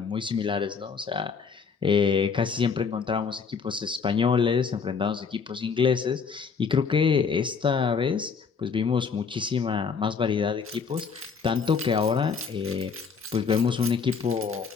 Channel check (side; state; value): right; quieter; 5.7 dB